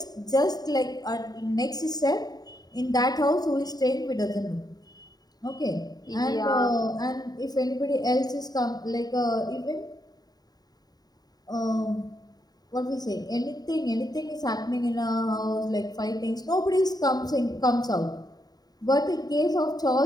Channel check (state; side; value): late; right; 0.19 ms